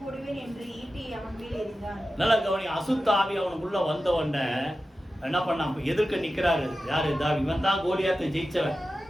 என்று ஈட்டியை அவன் மேல் எறிந்தான். நல்லா கவனி. அசுத்த ஆவி அவனுக்குள்ள வந்த உடனே என்ன பண்ணான்? எதிர்க்க நிக்கிறாரு யாரு? தாவீது. இவன் தான் கோலியாத்தை ஜெயிச்சவன்,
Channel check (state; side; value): normal; both; correlation 0.93